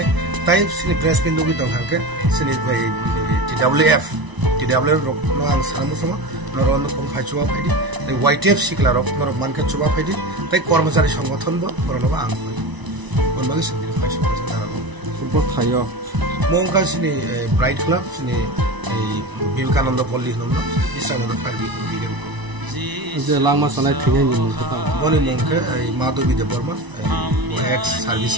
ताइ सिनि प्रेस बिन्दु बि दं हाके सिनि TWF नो आं सानमुसमा नरन को फाइचुवा फाइदि YTF सिकला रक नर मानके चुवा फाइदि ताइ कर्मचारी संगठन बो परनबा आं कोनबागे सिनि फाइसो फुटबल थायो मोंका सिनि ब्राइट क्लब सिनि विवेकानन्द पल्ली होन इसानन्द फाइदि बिगेन जे लामा सनाय थिगै नि बनि मोंके माधवी देवर्मा एक्स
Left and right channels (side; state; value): left; late; 1.0 ms